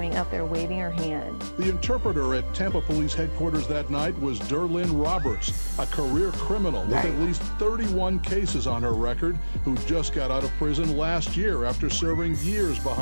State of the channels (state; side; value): inverted; both; correlation -1.00